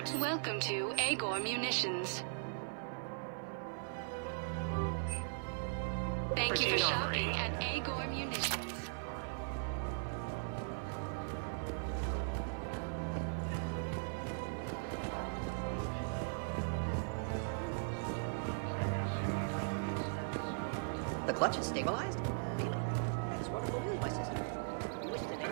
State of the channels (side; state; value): left; silent; 52 dB below the other